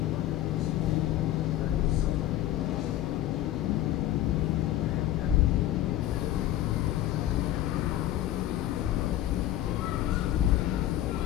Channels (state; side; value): quieter; right; 13.4 dB